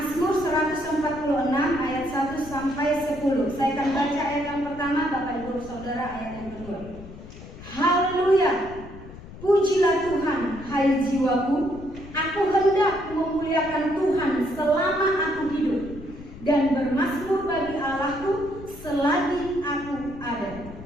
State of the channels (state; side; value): noise; left; rumble, 15 dB below the sound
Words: 146 ayat 1 sampai 10. Saya akan baca ayat yang pertama, Bapak Ibu Saudara ayat yang kedua. Haleluya. Pujilah Tuhan, hai jiwaku. Aku hendak memuliakan Tuhan selama aku hidup, dan bermazmur bagi Allahku selagi aku ada.